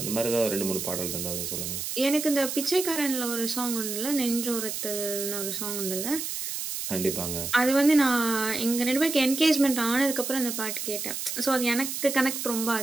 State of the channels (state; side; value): noise; right; hiss, 4 dB below the sound